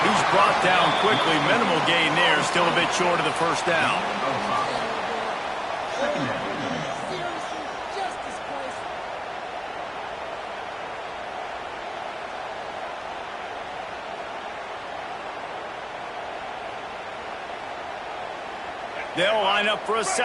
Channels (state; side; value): identical; both; correlation 1.00